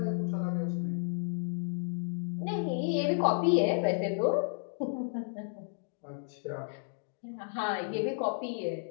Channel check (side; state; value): right; silent; digital silence